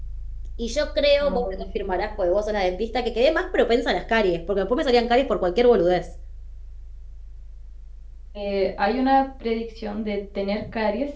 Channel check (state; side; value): identical; both; correlation 1.00